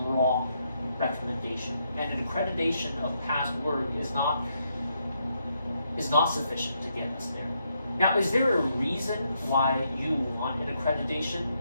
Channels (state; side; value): inverted; both; correlation -0.78